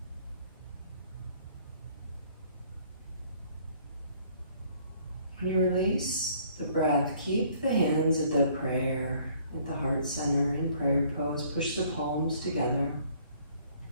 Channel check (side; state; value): both; inverted; correlation -0.59